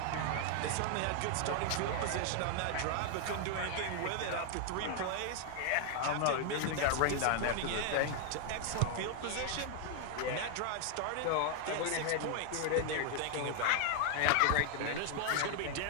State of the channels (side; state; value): both; different; correlation 0.00